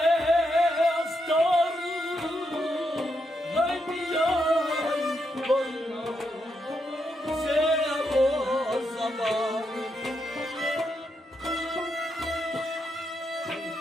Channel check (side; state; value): both; normal; correlation 0.82